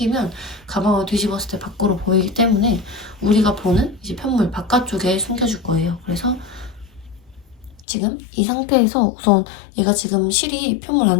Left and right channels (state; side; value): drops out; right; at 7.9 s